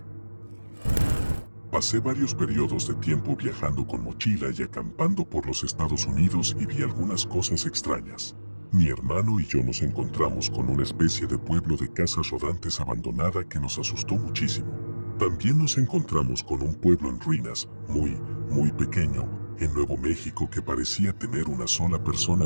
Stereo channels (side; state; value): both; inverted; correlation -1.00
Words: Pasé varios periodos de tiempo viajando con mochila y acampando por los Estados Unidos y vi algunas cosas extrañas. Mi hermano y yo nos encontramos con una especie de pueblo de casas rodantes abandonada que nos asustó muchísimo. También nos encontramos con un pueblo en ruinas, muy pequeño, en Nuevo México que parecía tener una sola persona